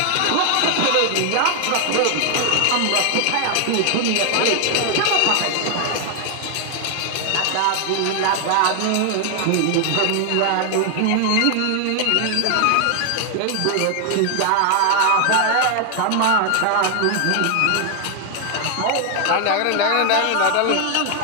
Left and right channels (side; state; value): both; different; correlation 0.00